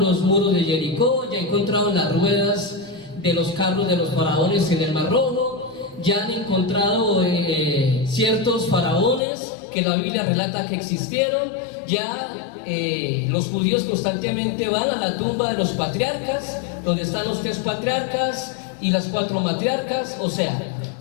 muros de Jericó, ya encontraron las ruedas de los carros de los faraones en el Mar Rojo, ya han encontrado ciertos faraones que la Biblia relata que existieron, ya los judíos constantemente van a la tumba de los patriarcas, donde están los 3 patriarcas y las 4 matriarcas. O sea,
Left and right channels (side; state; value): right; drops out; at 9.2 s